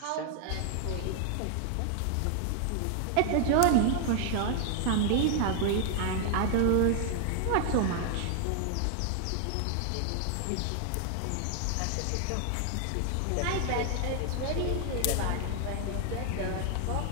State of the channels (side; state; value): both; different; correlation 0.00